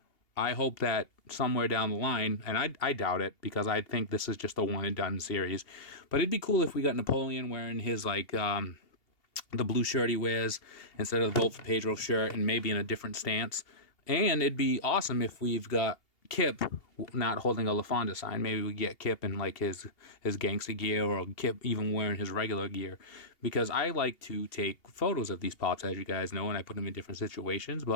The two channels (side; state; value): right; late; 2.8 ms